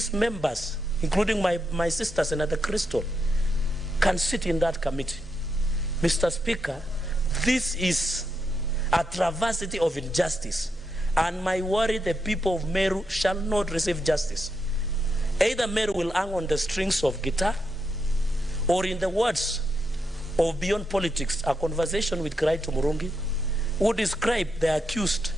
members, including my sister, Senator Crystal, can sit in that committee. Mr. Speaker, this is a travesty of injustice, and my worry, the people of Meru shall not receive justice. Either Meru will hang on the strings of guitar, or in the words of Beyond Politics, a conversation with Kraito Murungi, who described the accused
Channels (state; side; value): normal; both; correlation 0.83